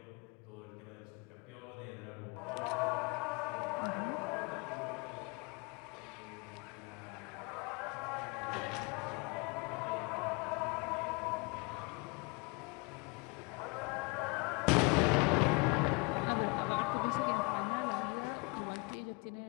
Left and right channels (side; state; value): right; quieter; 30.3 dB